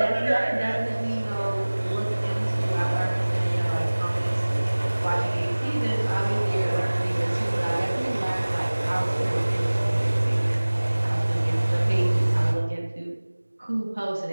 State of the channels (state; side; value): inverted; both; correlation -1.00